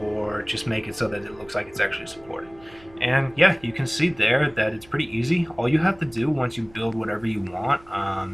or just make it so that it looks like it's actually supported. And yeah, you can see there that it's pretty easy. All you have to do once you build whatever you want,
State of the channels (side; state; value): right; noise; hum, 26 dB below the sound